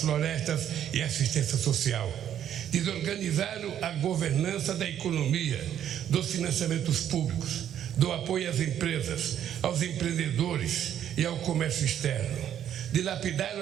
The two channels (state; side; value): quieter; left; 10.1 dB